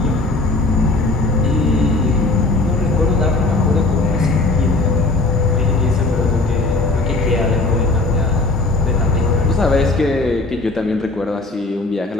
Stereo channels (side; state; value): right; quieter; 3.2 dB